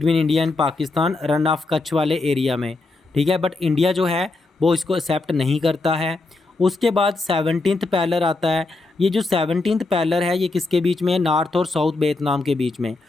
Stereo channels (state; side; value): quieter; right; 3.4 dB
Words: India and Pakistan run of Kutch वाले एरिया में, ठीक है, बट इंडिया जो है वो इसको एक्सेप्ट नहीं करता है। उसके बाद 17th पैरेलल आता है। ये जो 17th पैरेलल है ये किसके बीच में है? नॉर्थ और साउथ वियतनाम के बीच में।